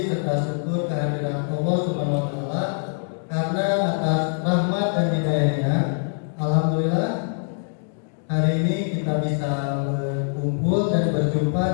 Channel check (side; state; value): right; silent; digital silence